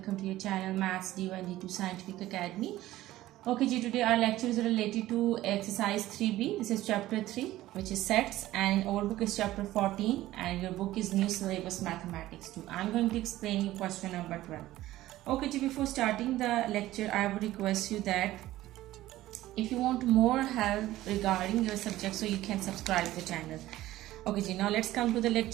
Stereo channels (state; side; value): quieter; left; 15.6 dB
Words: to your channel Maths D1 D2 Scientific Academy. Okay ji, today our lecture is related to exercise 3B. This is chapter 3 which is sets, and our book is chapter 14 and your book is new syllabus mathematics 2. I'm going to explain you question number 12. Okay ji, before starting the lecture I would request you that if you want more help regarding your subject, so you can subscribe the channel. Okay ji, now let's come to the